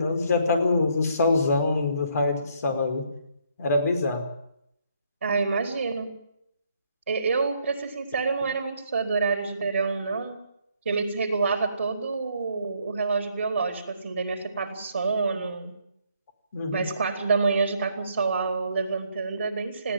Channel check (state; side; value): inverted; both; correlation -0.70